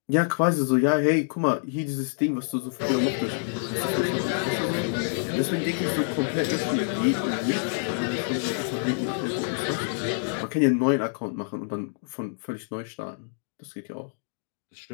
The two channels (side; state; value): right; silent; digital silence